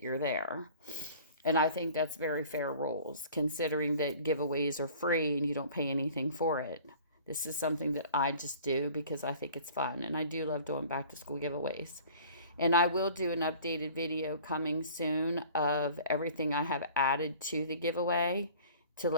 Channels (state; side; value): inverted; both; correlation -0.47